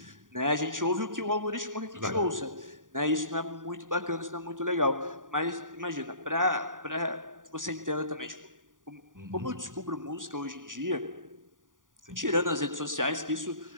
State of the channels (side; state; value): left; late; 0.89 ms